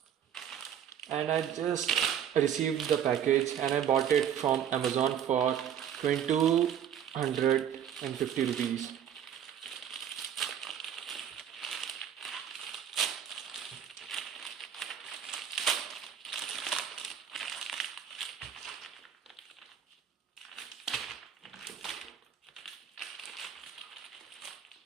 And I just received the package and I bought it from Amazon for 2250 rupees.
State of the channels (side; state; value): left; quieter; 9.2 dB